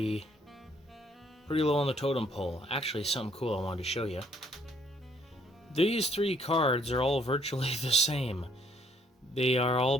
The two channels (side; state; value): both; normal; correlation 0.65